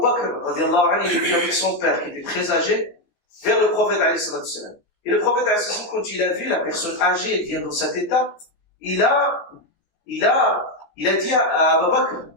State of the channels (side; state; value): right; late; 14 ms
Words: Bakr, radiallahu anhu, il est venu avec son père, qui était très âgé, vers le prophète alayhi wa sallam. Et le prophète alayhi wa sallam, quand il a vu la personne âgée, elle vient dans cet état, il a dit à Abu Bakr,